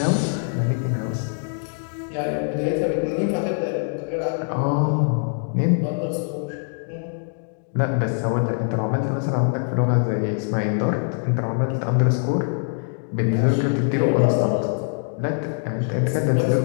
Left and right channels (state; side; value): silent; right; digital silence